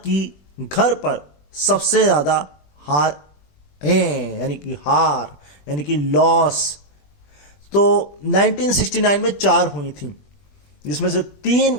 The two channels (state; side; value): late; right; 21 ms